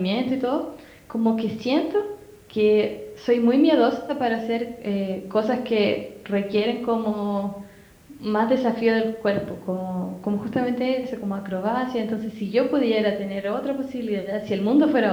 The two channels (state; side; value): identical; both; correlation 1.00